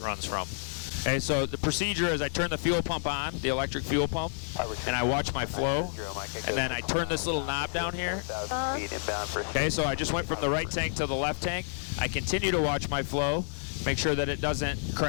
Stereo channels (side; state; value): right; silent; 58 dB below the other